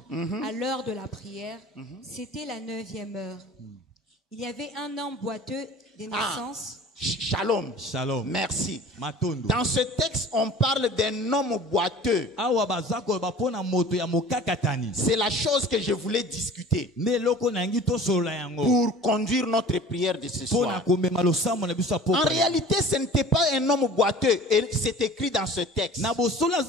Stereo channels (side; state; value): both; normal; correlation 0.44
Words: à l'heure de la prière. C'était la 9e heure. Il y avait un homme boiteux de naissance. Shalom. Shalom. Merci. Dans ce texte, on parle d'un homme boiteux. C'est la chose que je voulais discuter pour conduire notre prière de ce soir. En réalité, ce n'était pas un homme boiteux, et c'est écrit dans ce texte. Parce